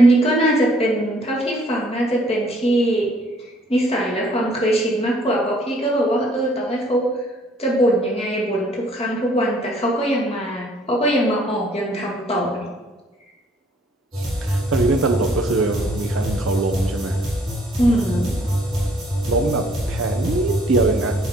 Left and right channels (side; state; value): both; normal; correlation 0.62